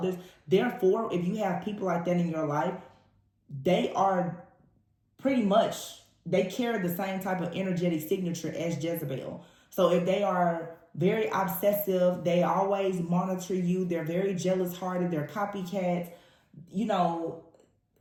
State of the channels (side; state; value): both; identical; correlation 1.00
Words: Therefore, if you have people like that in your life, they are pretty much, they carry the same type of energetic signature as Jezebel. So if they are very obsessive, they always monitor you, they're very jealous hearted, they're copycats, you know,